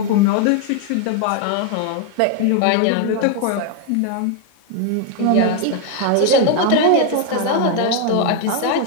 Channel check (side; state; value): both; different; correlation 0.00